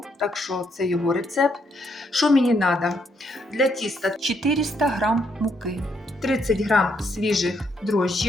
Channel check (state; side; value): normal; both; correlation 0.74